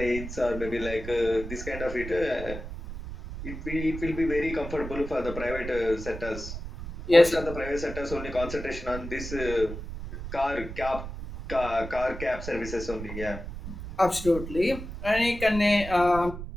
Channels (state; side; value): noise; right; rumble, 9 dB below the sound